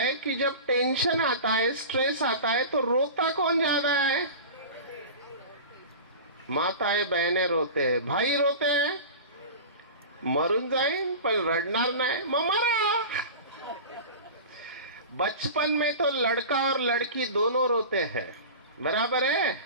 कि जब टेंशन आता है, स्ट्रेस आता है, तो रोता कौन ज्यादा है? माताएं बहनें रोते हैं, भाई रोते हैं, मरून जाईन पण रडणार नाही ममारा। बचपन में तो लड़का और लड़की दोनों रोते हैं, बराबर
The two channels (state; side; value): inverted; both; correlation -0.33